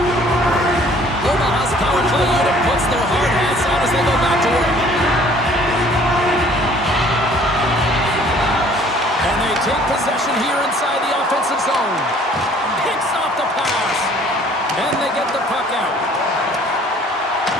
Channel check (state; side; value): normal; both; correlation 0.55